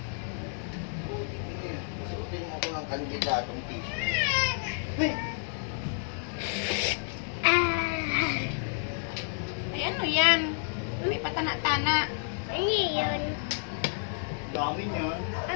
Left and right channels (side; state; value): right; silent; 58 dB below the other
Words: Suotin mo ko ng kandidatong t-shirt. Hey! Ay, ano yan? May patana-tana. Ano yun? Dami niyan.